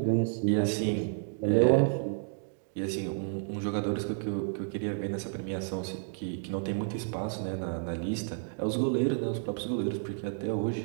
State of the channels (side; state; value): left; silent; digital silence